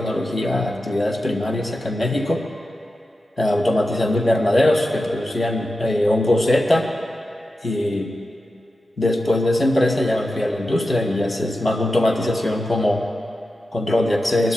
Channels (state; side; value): normal; both; correlation 0.91